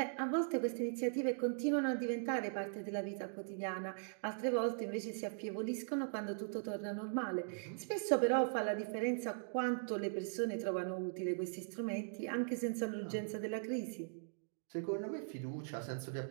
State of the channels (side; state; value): left; silent; digital silence